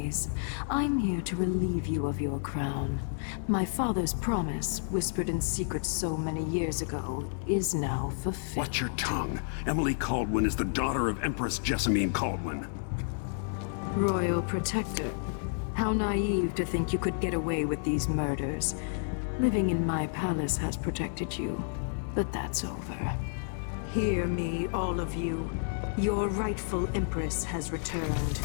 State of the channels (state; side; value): silent; right; 57 dB below the other